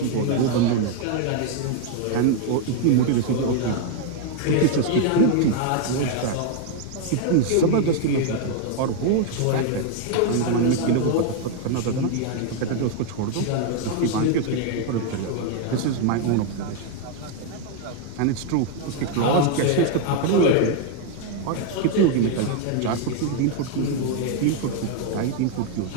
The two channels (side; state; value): both; different; correlation 0.00